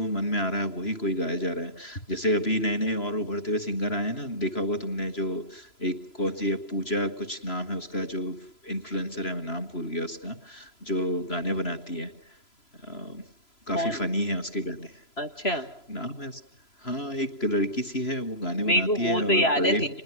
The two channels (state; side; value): late; right; 3.0 ms